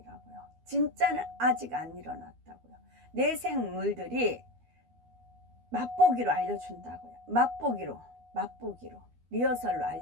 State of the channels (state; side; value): late; left; 12 ms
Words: 진짜는 아직 안 일어났다고요. 내생물들이 맛보기로 알려준다고요. 맛보기로 리허설로